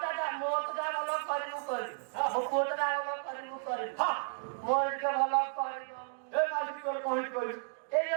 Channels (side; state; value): left; silent; digital silence